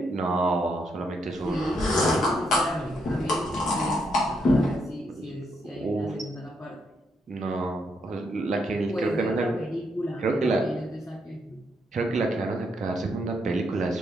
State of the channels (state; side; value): normal; both; correlation 0.77